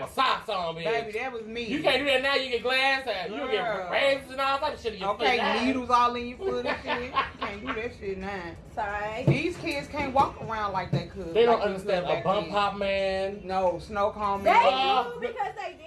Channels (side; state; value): both; identical; correlation 1.00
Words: with socks on, bitch. Baby, that was me. You can't do that now. You get glass out. You get razors and all type of shit in your Okay, foot. needles all in your foot and shit. You can't do that shit now. Sorry. These kids can't walk around like they could. They don't like understand could a bump back pop, man. then. No, snow cone They man. do because they